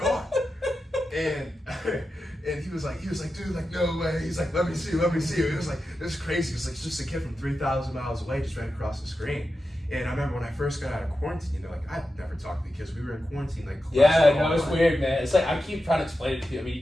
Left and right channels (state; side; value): normal; both; correlation 0.91